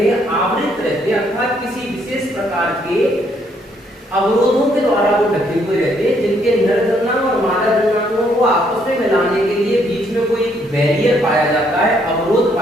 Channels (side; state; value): both; normal; correlation 0.70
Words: हैं, आवृत रहते हैं, अर्थात किसी विशेष प्रकार के अवरोधों के द्वारा वो ढके हुए रहते हैं, जिनके नर जन्मांग और मादा जन्मांगों को आपस में मिलाने के लिए बीच में कोई बैरियर पाया जाता है, अवरोध